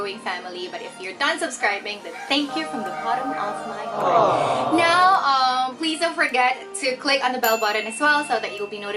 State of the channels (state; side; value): identical; both; correlation 1.00